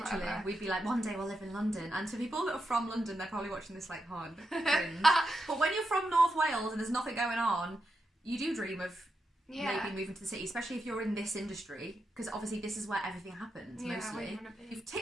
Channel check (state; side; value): normal; both; correlation 0.86